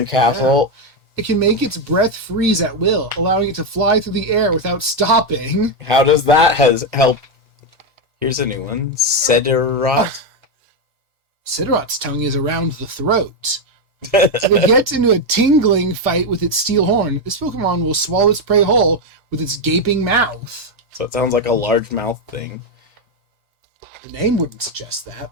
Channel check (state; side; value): late; left; 1.1 ms